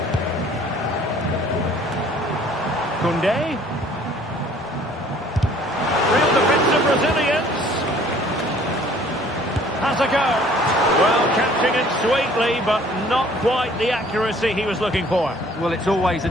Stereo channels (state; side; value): normal; both; correlation 0.55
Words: Koundé. Real defensive Brazilians. Has a go. Well, catching it sweetly, but not quite the accuracy he was looking for. Well, it's always a